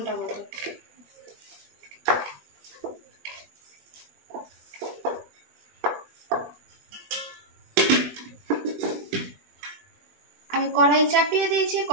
মতো। আমি কড়াই চাপিয়ে দিয়েছি,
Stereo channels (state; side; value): late; left; 20 ms